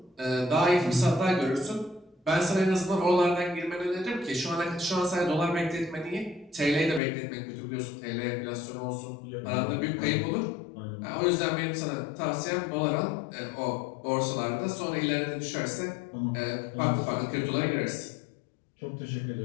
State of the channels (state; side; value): drops out; right; at 7.0 s